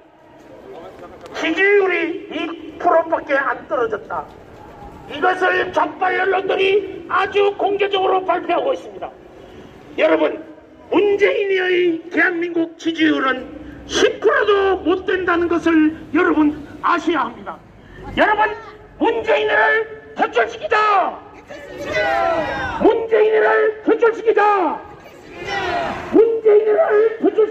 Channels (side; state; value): both; identical; correlation 1.00